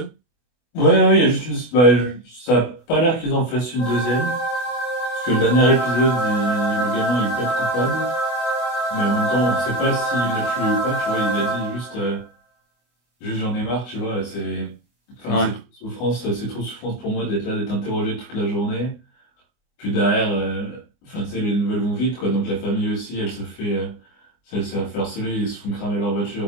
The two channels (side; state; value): right; late; 24 ms